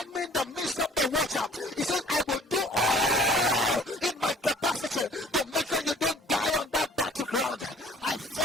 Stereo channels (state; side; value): normal; both; correlation 0.52